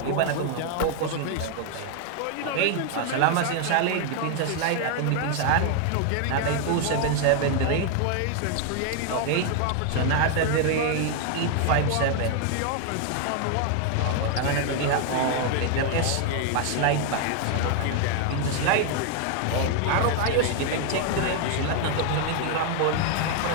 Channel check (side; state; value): both; different; correlation 0.00